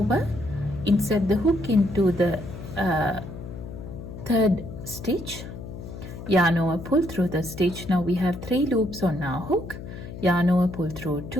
insert the hook into the third stitch, yarn over, pull through the stitch. Now we have 3 loops on our hook, yarn over, pull through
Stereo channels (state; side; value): noise; left; hum, 11 dB below the sound